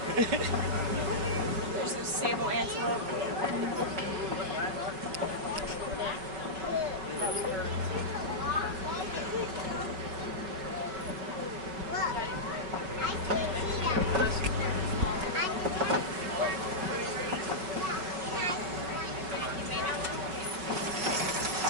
There's those sable antelope.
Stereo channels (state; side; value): late; left; 5.4 ms